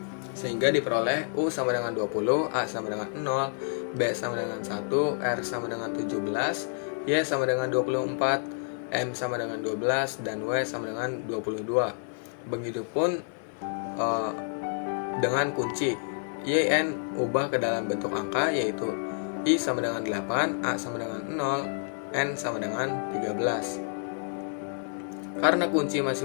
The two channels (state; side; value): silent; right; digital silence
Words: sehingga diperoleh U sama dengan 20, A sama dengan 0, B sama dengan 1, R sama dengan 17, Y sama dengan 24, M sama dengan 12, dan W sama dengan 22. Begitupun dengan kunci YN ubah ke dalam bentuk angka, yaitu I sama dengan 8, A sama dengan 0, N sama dengan 13. Karena kunci